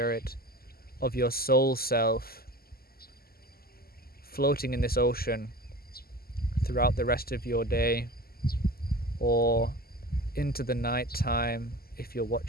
of your soul self, floating in this ocean throughout the rest of your day, or into the night time if you're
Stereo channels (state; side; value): late; right; 0.44 ms